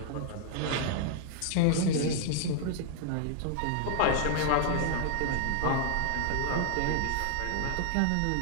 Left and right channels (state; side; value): different; both; correlation -0.01